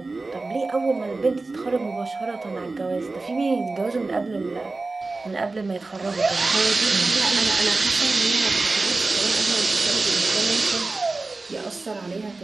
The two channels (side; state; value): left; quieter; 3.5 dB